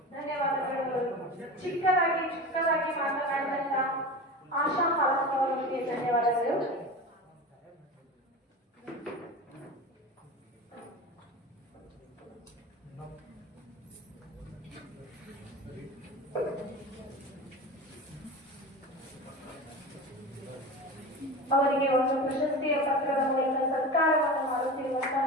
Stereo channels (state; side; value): normal; both; correlation 0.29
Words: ಧನ್ಯವಾದಗಳು. ಚಿಕ್ಕದಾಗಿ ಮಾತನಾಡಿದಂತ ಆಶಾ ಹಾಲಪ್ಪ ಅವರಿಗೆ ಧನ್ಯವಾದಗಳು. ಅವರಿಗೆ ಒಂದು ಪ್ರಶಸ್ತಿಯ ಪತ್ರದ ಮೂಲಕ ಸತ್ಕಾರವನ್ನು ಮಾಡುತ್ತಿರುವಂತಹ